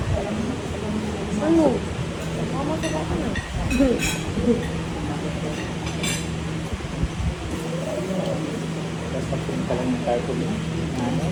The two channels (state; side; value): identical; both; correlation 1.00